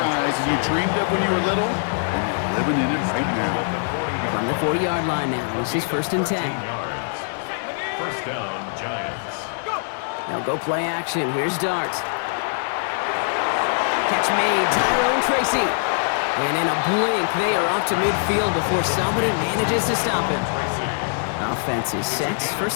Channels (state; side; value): silent; right; digital silence